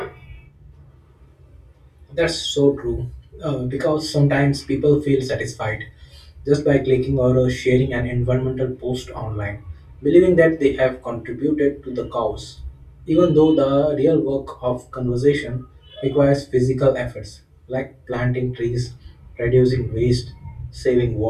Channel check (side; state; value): both; identical; correlation 1.00